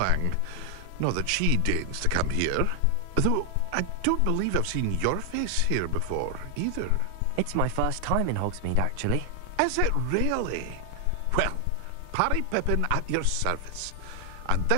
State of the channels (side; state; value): both; different; correlation 0.00